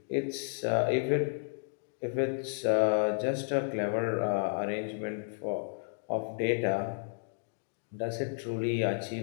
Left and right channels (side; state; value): right; silent; digital silence